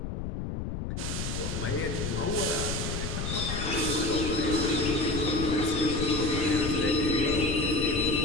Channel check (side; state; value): left; noise; rumble, 4 dB below the sound